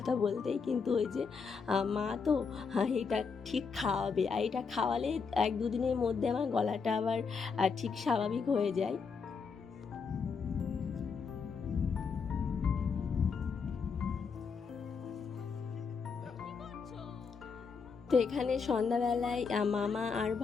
বলতেই, কিন্তু ওই যে মা তো এটা ঠিক খাওয়াবে, আর এটা খাওয়ালে 1-2 দিনের মধ্যে আমার গলাটা আবার ঠিক স্বাভাবিক হয়ে যায়। তো এখানে সন্ধ্যাবেলায় মামা আর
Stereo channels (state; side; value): quieter; right; 5.4 dB